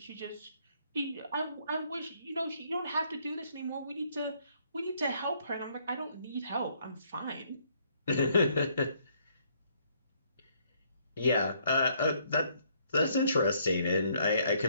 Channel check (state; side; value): inverted; both; correlation -0.68